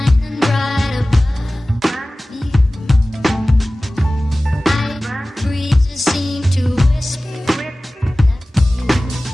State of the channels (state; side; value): normal; both; correlation 0.97